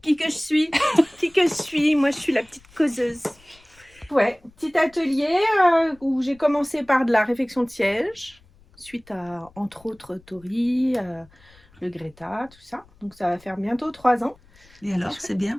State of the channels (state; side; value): noise; left; rumble, 29 dB below the sound